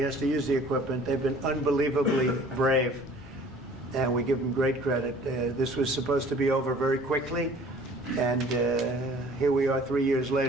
to use the equipment. They've been unbelievably brave, and we give them great credit. This was supposed to be over very quickly, and here we are 3 years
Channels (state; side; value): normal; both; correlation 0.51